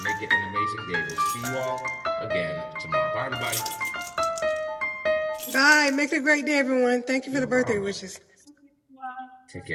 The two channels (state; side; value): identical; both; correlation 1.00